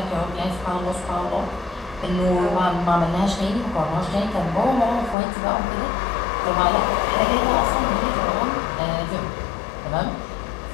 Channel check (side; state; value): right; drops out; at 5.2 s